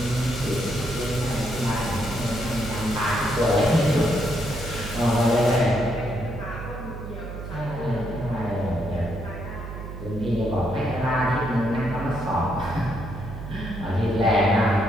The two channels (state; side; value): noise; right; hum, 9 dB below the sound